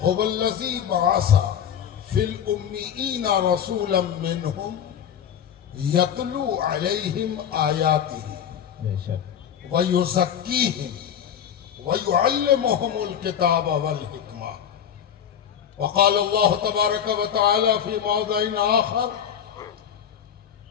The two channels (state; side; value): quieter; right; 8.9 dB